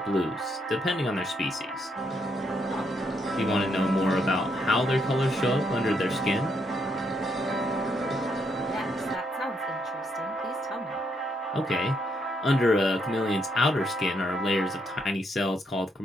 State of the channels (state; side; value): normal; both; correlation 0.76